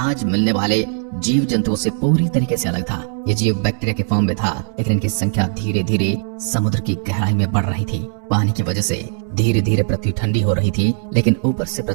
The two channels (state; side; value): silent; left; digital silence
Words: मिलने वाले जीव जंतुओं से पूरी तरीके से अलग था। ये जीव बैक्टीरिया के फॉर्म में था, लेकिन इनकी संख्या धीरे धीरे समुद्र की गहराई में बढ़ रही थी। पानी की वजह से धीरे धीरे पृथ्वी ठंडी हो रही थी, लेकिन ऊपर से